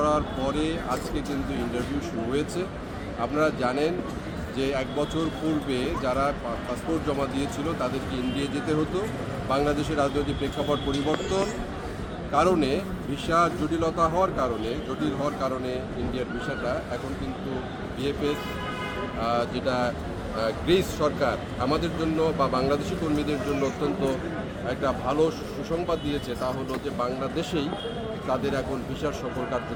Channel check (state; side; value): identical; both; correlation 1.00